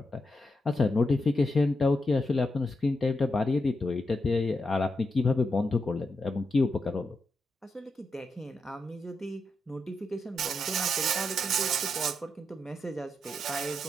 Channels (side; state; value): both; normal; correlation 0.85